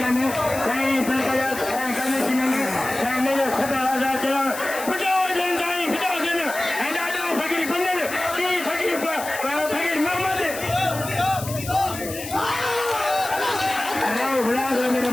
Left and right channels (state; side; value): noise; left; hiss, 10 dB below the sound